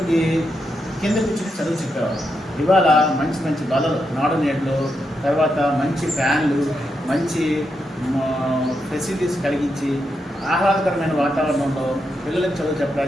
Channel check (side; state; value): both; normal; correlation 0.84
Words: కింద కూర్చుని చదువు చెప్పేవారు. ఇవాళ మంచి మంచి బలలు నాడు నేట్లు, తర్వాత మంచి ఫ్యాన్లు, మంచి ఫెసిలిటీస్ కలిగించి ఆహ్లాదకరమైన వాతావరణంలో పిల్లలకు చదువు